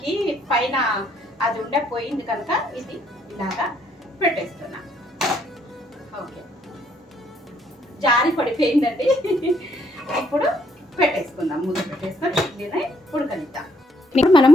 పైన అది పోయింది కనుక ఇది ఇలాగా పెట్టేస్తున్నా. ఓకే, జారి పడిపోయిందండి. ఇప్పుడు పెట్టేసుకుందాం. మూత పెట్టేసుకొని ఇడ్లీని ఉడకనిద్దాం. ఇప్పుడు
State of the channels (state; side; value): normal; both; correlation 0.69